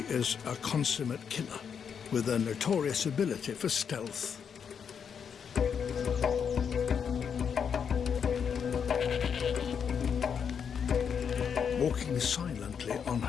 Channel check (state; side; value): quieter; right; 7.1 dB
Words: a consummate killer, with a notorious ability for stealth. Walking silently on